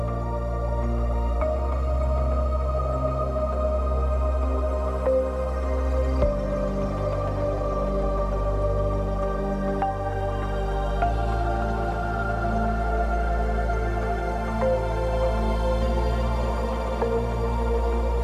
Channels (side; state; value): both; identical; correlation 1.00